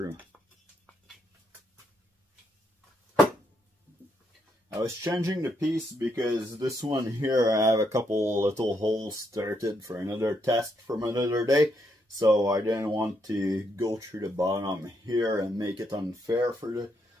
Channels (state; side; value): normal; both; correlation 0.77